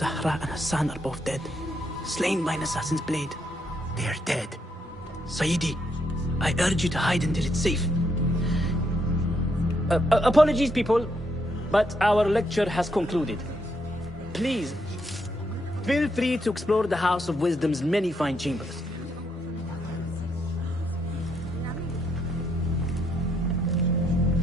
and Hassan are both dead, slain by an assassin's blade. They are dead. Sayyidi, I urge you to hide until it's safe. Apologies, people, but our lecture has concluded. Please, feel free to explore the House of Wisdom's many fine chambers.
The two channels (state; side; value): normal; both; correlation 0.76